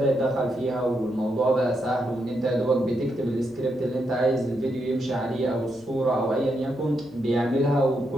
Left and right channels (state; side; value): normal; both; correlation 0.81